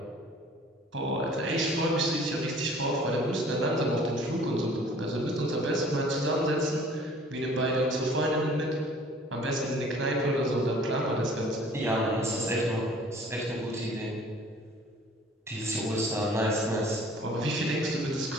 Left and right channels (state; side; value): normal; both; correlation 0.51